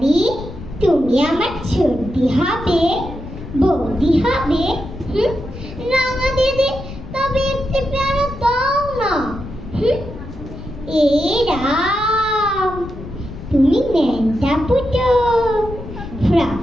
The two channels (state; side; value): noise; left; rumble, 12 dB below the sound